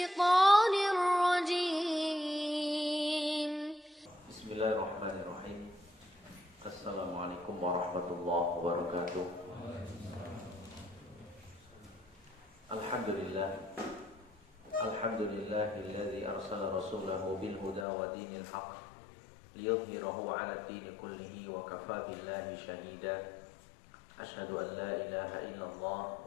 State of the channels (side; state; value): right; drops out; at 17.9 s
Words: الرجيم. بسم الله الرحمن الرحيم. السلام عليكم ورحمة الله وبركاته. الحمد لله الذي أرسل رسوله بالهدى ودين الحق ليظهره على الدين كله وكفى بالله شهيدا. أشهد أن لا إله إلا